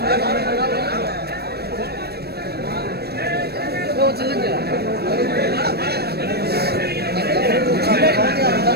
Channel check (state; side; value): late; left; 0.47 ms